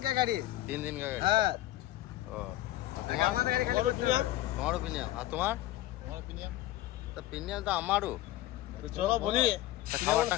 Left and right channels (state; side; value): quieter; right; 15.4 dB